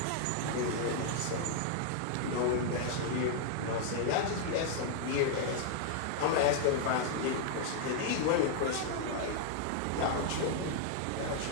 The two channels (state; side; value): different; both; correlation 0.00